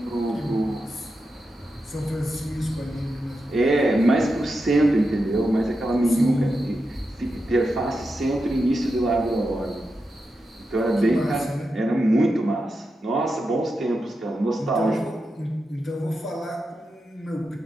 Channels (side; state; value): both; normal; correlation 0.88